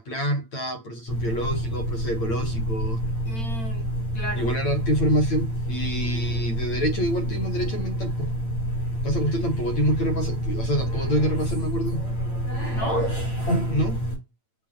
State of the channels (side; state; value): right; late; 8.9 ms